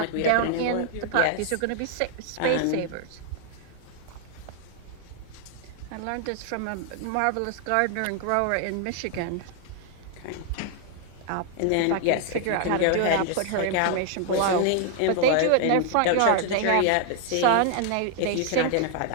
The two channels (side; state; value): both; different; correlation 0.00